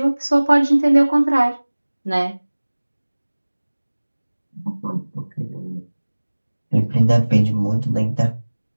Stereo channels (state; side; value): inverted; both; correlation -1.00